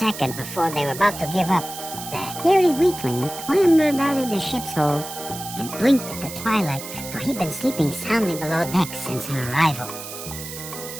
before they were about to give up, the hairy weakling clambered out of the ship's hold and blinked at the twilight, for he'd been sleeping soundly below deck since her arrival.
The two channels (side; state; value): right; noise; hiss, 10 dB below the sound